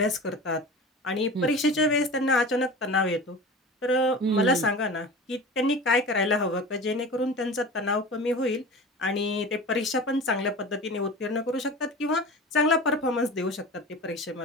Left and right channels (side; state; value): both; normal; correlation 0.34